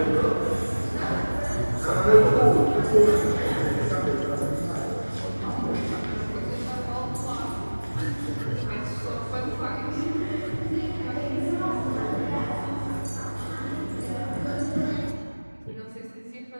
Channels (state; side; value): inverted; both; correlation -1.00